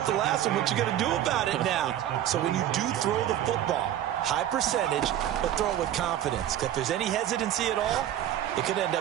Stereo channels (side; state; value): left; quieter; 11.7 dB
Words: the last one. What you going to do about it now? So when you do throw the football, high percentage, but throw it with confidence. If there's any hesitancy at all, it could end